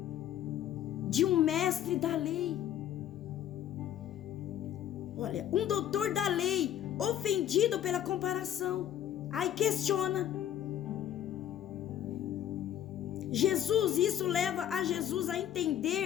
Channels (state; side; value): quieter; right; 11.0 dB